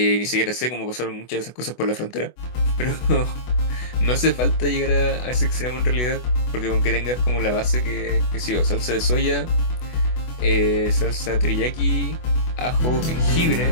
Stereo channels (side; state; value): right; late; 24 ms